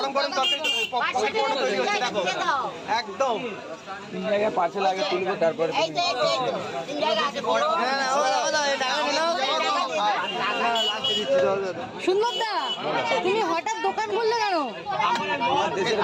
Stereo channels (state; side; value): identical; both; correlation 1.00